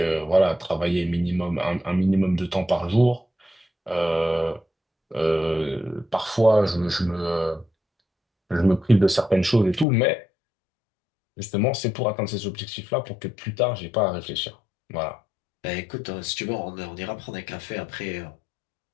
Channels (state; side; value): drops out; right; at 9.9 s